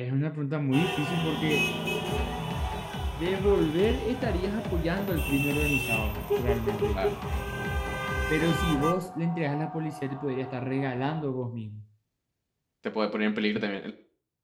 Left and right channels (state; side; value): identical; both; correlation 1.00